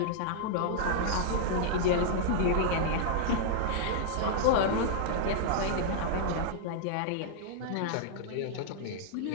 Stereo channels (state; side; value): different; both; correlation -0.01